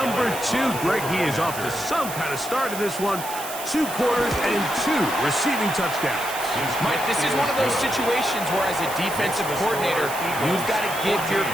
2. Greg, he is off to some kind of start in this one. 2 quarters and 2 receiving touchdowns. Mike, this is one of those situations where as a defensive coordinator, you've got to give your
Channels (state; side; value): noise; right; hiss, 9 dB below the sound